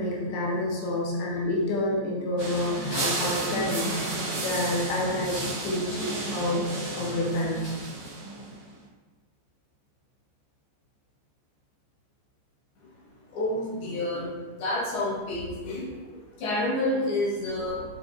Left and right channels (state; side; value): late; right; 14 ms